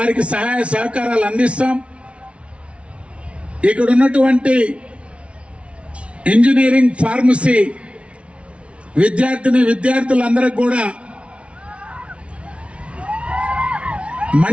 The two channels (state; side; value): late; left; 0.061 ms